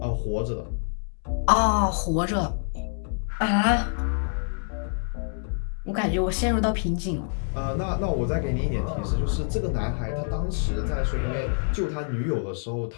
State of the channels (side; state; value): right; silent; 61 dB below the other